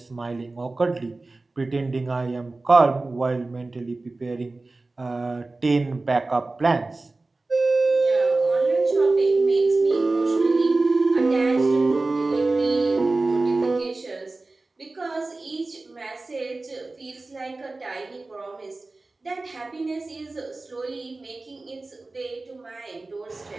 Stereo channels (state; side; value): quieter; left; 3.3 dB